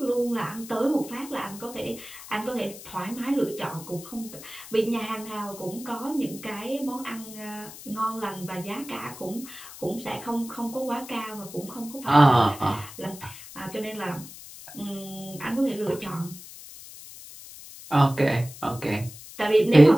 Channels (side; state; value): left; noise; hiss, 15 dB below the sound